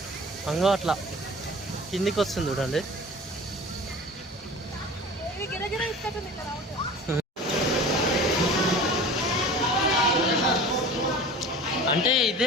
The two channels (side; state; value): both; normal; correlation 0.39